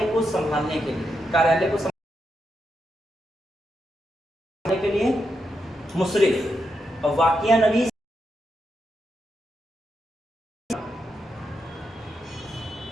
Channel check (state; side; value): normal; both; correlation 0.84